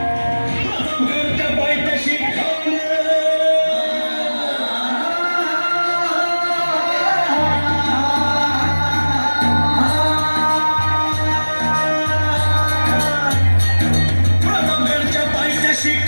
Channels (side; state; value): both; inverted; correlation -1.00